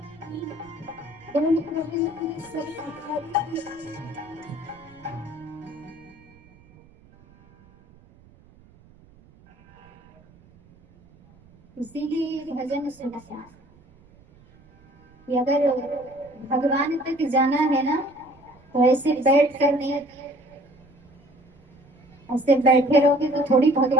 इसीलिए भजन सुनना कि अगर भगवान तक जाना है ना तो ऐसे बैठ कर नहीं, ऐसे बैठे रहोगे तो थोड़ी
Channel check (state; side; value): noise; right; rumble, 27 dB below the sound